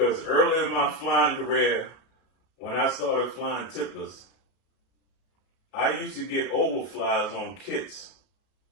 early in my flying career, when I started flying tipplers, I used to get overflies on kits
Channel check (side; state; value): right; late; 33 ms